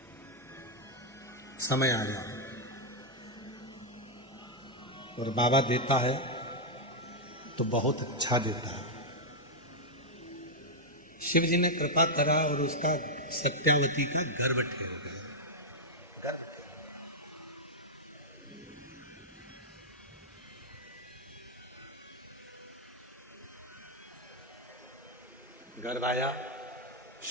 समय आया और बाबा देता है तो बहुत अच्छा देता है। शिव जी ने कृपा करा और उसका सत्यावती का गर्भ ठहर गया। गर्भ आया,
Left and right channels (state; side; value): normal; both; correlation -0.04